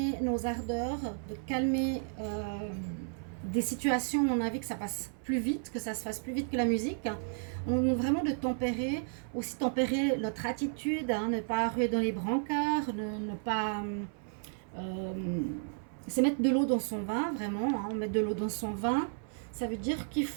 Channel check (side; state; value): left; silent; 55 dB below the other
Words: nos ardeurs, de calmer des situations où on a envie que ça passe plus vite, que ça se fasse plus vite que la musique. On a vraiment de tempérer, aussi tempérer notre attitude, hein, ne pas ruer dans les brancards, ne pas... c'est mettre de l'eau dans son vin, vraiment, hein, mettre de l'eau dans son vin. Ça veut dire qu'il